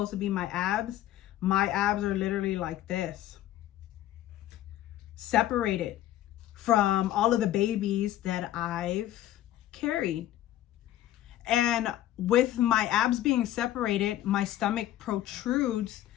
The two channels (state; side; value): quieter; right; 13.3 dB